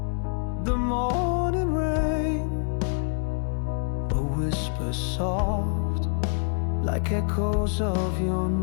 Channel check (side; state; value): right; silent; digital silence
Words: the morning rain, a whisper soft like echoes of your